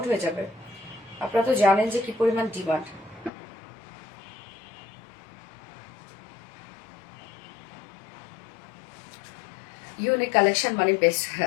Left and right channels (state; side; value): drops out; right; at 3.3 s